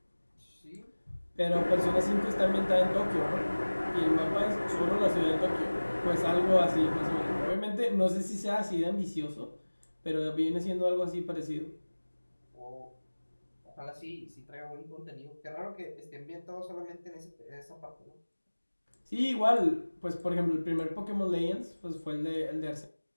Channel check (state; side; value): inverted; both; correlation -1.00